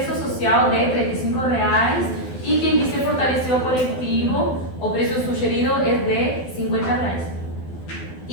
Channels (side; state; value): right; late; 12 ms